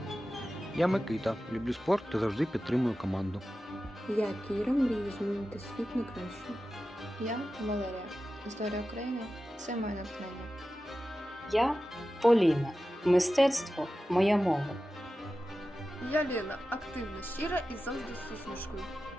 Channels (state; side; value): normal; both; correlation 0.93